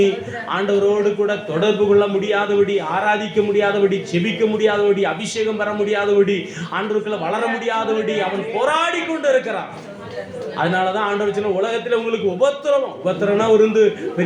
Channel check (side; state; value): both; identical; correlation 1.00